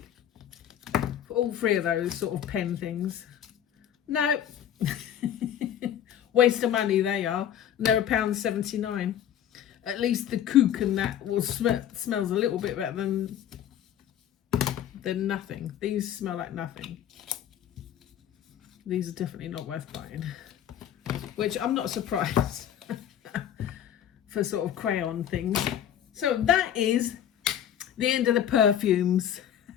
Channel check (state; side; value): quieter; right; 10.1 dB